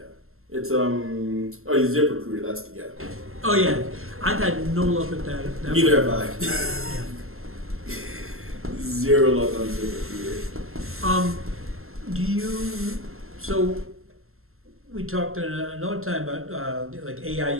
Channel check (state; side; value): late; left; 0.62 ms